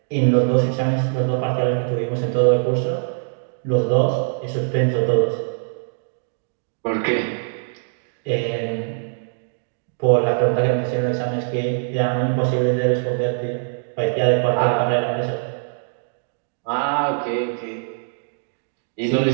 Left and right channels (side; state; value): left; silent; digital silence